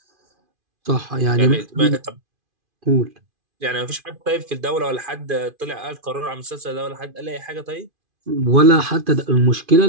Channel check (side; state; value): left; late; 2.5 ms